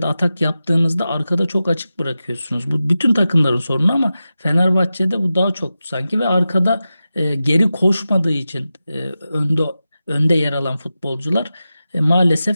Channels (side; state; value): both; inverted; correlation -0.93